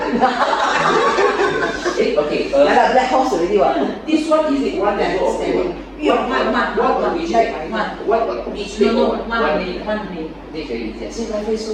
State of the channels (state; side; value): identical; both; correlation 1.00